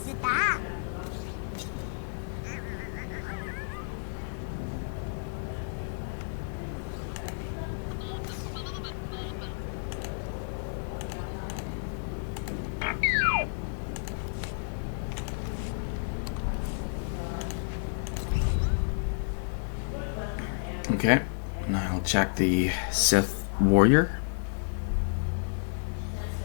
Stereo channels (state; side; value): silent; right; digital silence